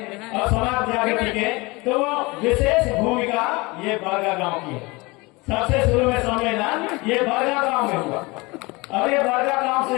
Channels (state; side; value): quieter; right; 24.4 dB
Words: और समाज जागृति के, तो विशेष भूमिका ये बरगा गांव की है। सबसे शुरू में सम्मेलन ये बरगा गांव में हुआ और ये बरगा गांव